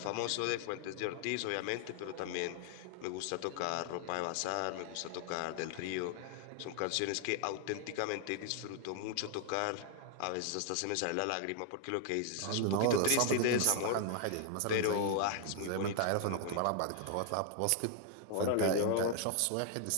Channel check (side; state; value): both; different; correlation 0.00